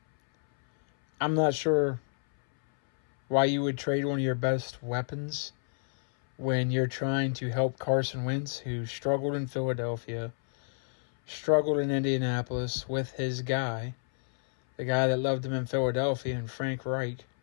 not sure why you would trade one of your best weapons when you're trying to help Carson Wentz, who struggled in Philadelphia, struggled in Indianapolis with his guy, the guy that loved him in Philadelphia, and Frank Reich.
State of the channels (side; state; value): right; silent; 58 dB below the other